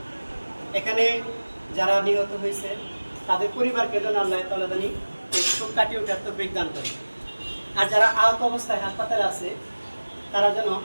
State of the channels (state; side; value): inverted; both; correlation -1.00